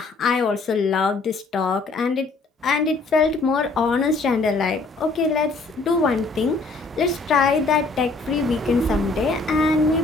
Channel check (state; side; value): quieter; right; 3.7 dB